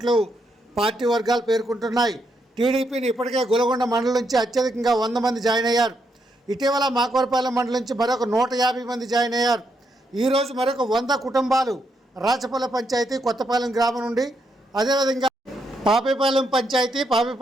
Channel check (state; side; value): normal; both; correlation 0.79